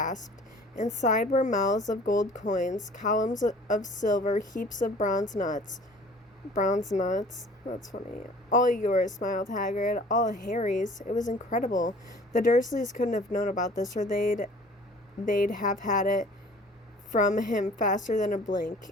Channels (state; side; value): normal; both; correlation 0.49